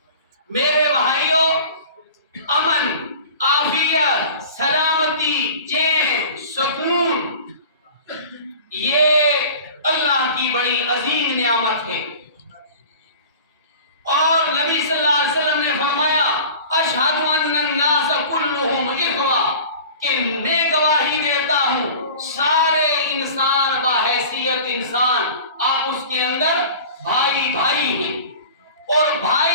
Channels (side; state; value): both; inverted; correlation -0.40